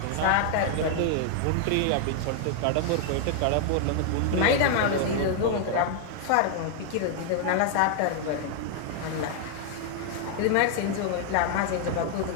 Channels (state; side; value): different; both; correlation 0.00